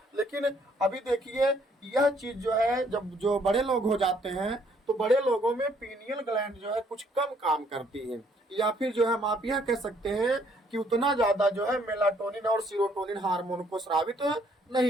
लेकिन अभी देखिए यह चीज जो है जब जो बड़े लोग हो जाते हैं तो बड़े लोगों में पीनियल ग्लैंड जो है कुछ कम काम करती है, या फिर जो है हम आप यह कह सकते हैं कि उतना ज्यादा जो है मेलाटोनिन और सीरोटोनिन हार्मोन को स्रावित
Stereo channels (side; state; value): both; normal; correlation 0.66